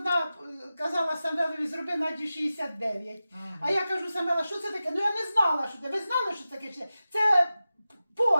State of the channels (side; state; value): both; inverted; correlation -0.94